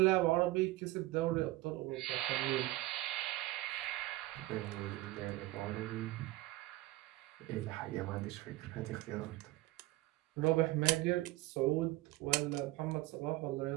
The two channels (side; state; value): left; quieter; 18.2 dB